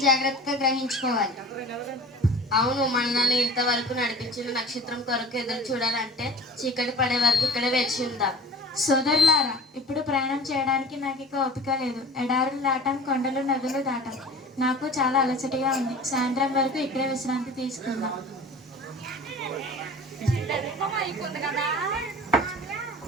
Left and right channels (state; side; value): normal; both; correlation 0.41